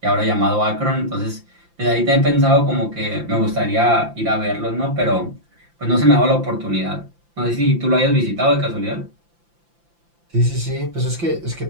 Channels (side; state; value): left; late; 5.8 ms